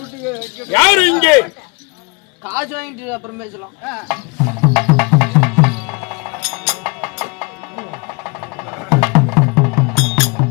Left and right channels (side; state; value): right; quieter; 29.7 dB